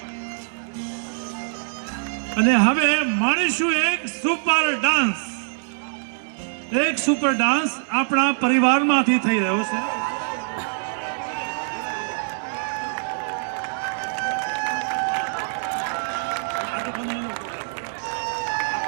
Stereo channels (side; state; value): left; silent; 61 dB below the other